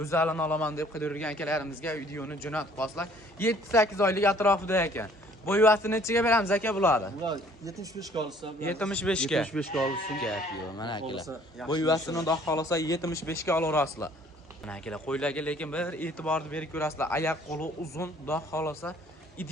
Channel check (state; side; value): normal; both; correlation 0.57